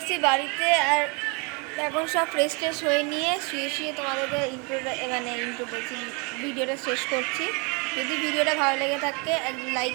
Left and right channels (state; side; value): quieter; left; 31.9 dB